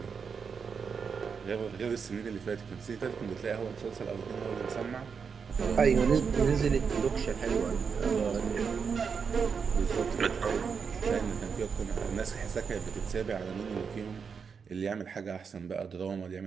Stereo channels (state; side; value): quieter; left; 6.0 dB